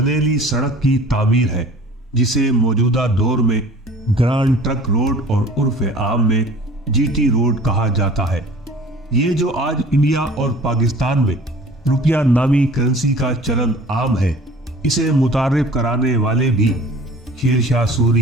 سڑک کی تعمیر ہے، جسے موجودہ دور میں گرانڈ ٹرک روڈ اور عرف عام میں جی ٹی روڈ کہا جاتا ہے۔ یہ جو آج انڈیا اور پاکستان میں روپیہ نامی کرنسی کا چلن عام ہے، اسے متعارف کرانے والے بھی شیر شاہ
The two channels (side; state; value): both; normal; correlation 0.46